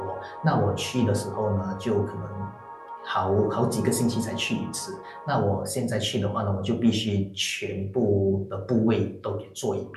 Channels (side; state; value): both; identical; correlation 1.00